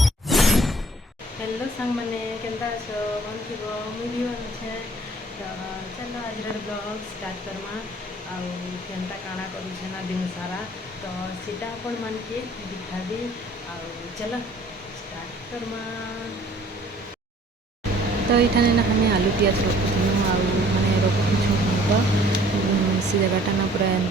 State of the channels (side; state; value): both; normal; correlation 0.55